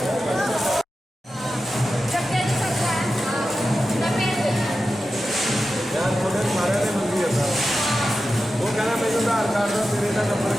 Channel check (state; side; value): normal; both; correlation 0.92